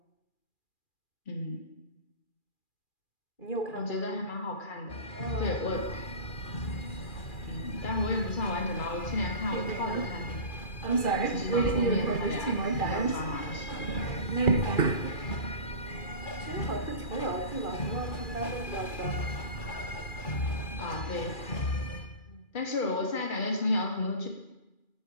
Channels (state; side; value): late; right; 2.4 ms